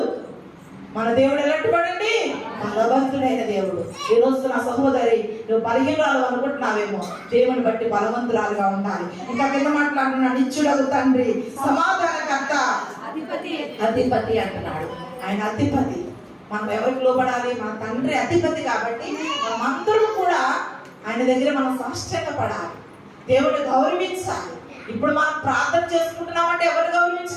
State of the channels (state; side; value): identical; both; correlation 1.00